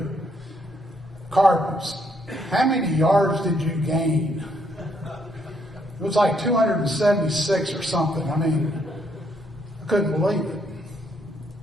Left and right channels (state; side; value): normal; both; correlation 0.72